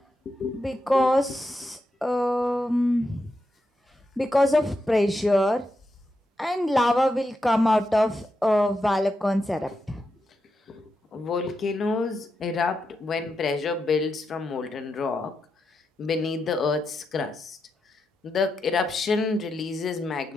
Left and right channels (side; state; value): both; normal; correlation 0.86